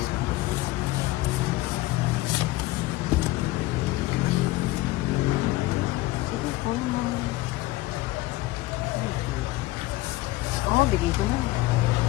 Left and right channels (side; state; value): right; quieter; 18.6 dB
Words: Oo, bigay ko na.